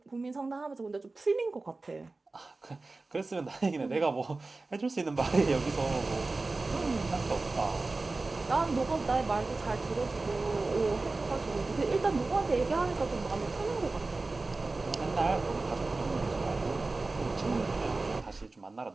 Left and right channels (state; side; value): quieter; left; 3.5 dB